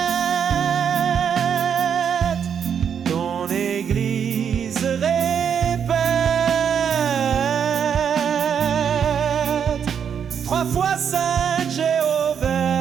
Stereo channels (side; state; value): left; quieter; 7.7 dB